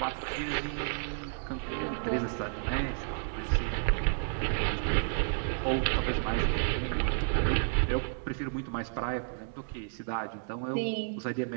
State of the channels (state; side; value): silent; left; 57 dB below the other